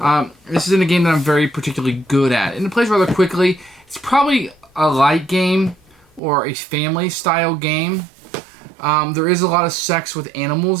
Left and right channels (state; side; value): drops out; left; at 6.2 s